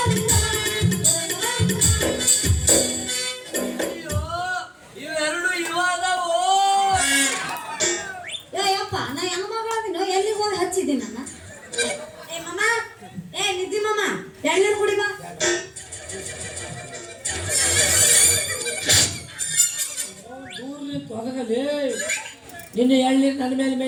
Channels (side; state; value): both; identical; correlation 1.00